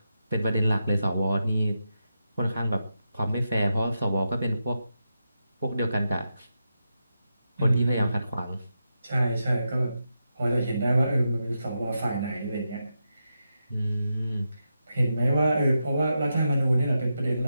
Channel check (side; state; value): both; inverted; correlation -0.87